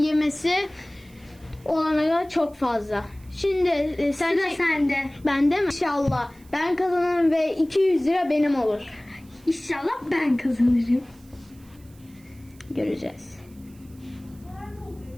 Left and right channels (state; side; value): noise; right; hiss, 28 dB below the sound